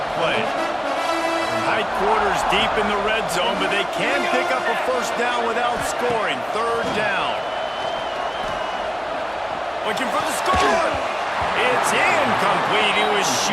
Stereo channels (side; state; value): both; identical; correlation 1.00